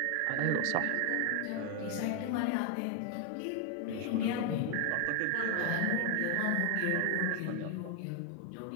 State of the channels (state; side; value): different; both; correlation 0.00